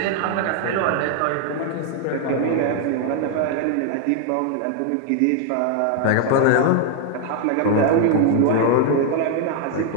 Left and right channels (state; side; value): different; both; correlation 0.00